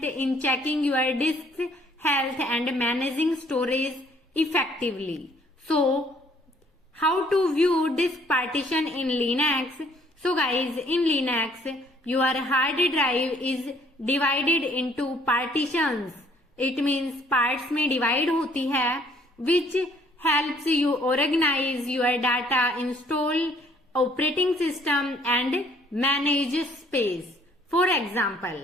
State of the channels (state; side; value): normal; both; correlation 0.62